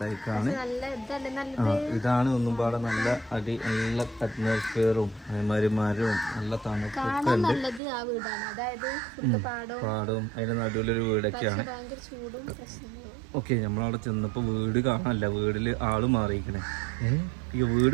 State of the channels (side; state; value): left; drops out; at 7.8 s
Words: ഇതാണ് ഒന്നും പാടെ നല്ല നല്ല അറ്റ്മോസ്ഫിയറും അതേമാതിരി മരവും നല്ല തണുപ്പൊക്കെ ഉണ്ട്. പാടവും അതിന്റെ നടുവിലൊരു വീടൊക്കെയാണ്. ഓക്കെ, നമ്മളവിടെ ചെന്നപ്പോ വീട് കാണാനല്ല, വീട്ടില് ആള് മാറിയിരിക്കണേ. ഈ